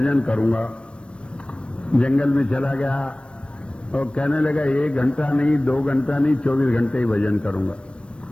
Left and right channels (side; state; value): right; late; 0.058 ms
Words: करूंगा। जंगल में चला गया और कहने लगा 1 घंटा नहीं, 2 घंटा नहीं, 24 घंटे ही भजन करूंगा।